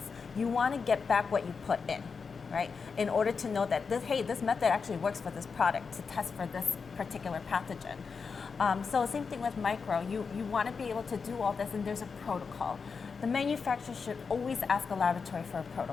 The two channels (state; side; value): quieter; right; 5.3 dB